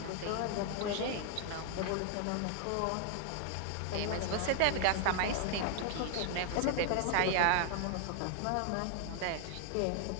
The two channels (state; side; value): different; both; correlation 0.00